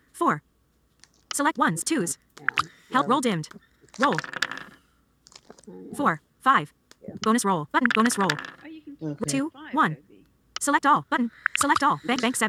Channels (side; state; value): both; identical; correlation 1.00